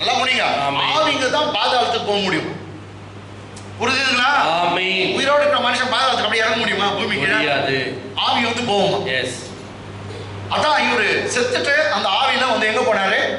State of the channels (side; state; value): both; identical; correlation 1.00